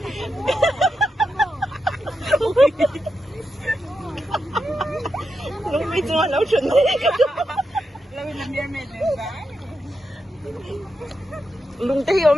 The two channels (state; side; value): normal; both; correlation 0.86